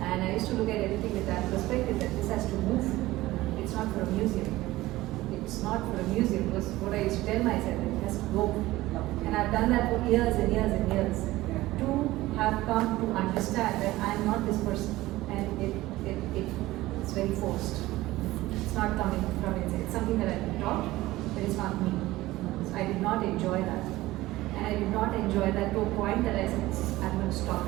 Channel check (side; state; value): left; quieter; 17.6 dB